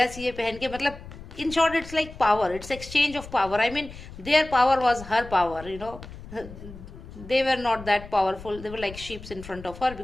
ये पहन के, मतलब in short it's like power, it's exchange of power. I mean their power was her power, you know. They were not that powerful, they were like sheep in front of her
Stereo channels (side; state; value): left; noise; rumble, 15 dB below the sound